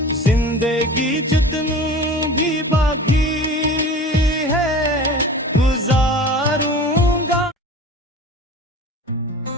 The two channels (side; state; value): both; normal; correlation 0.38